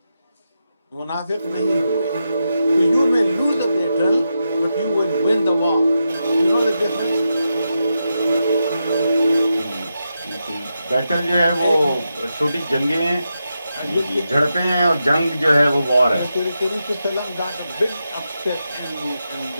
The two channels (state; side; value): inverted; both; correlation -0.87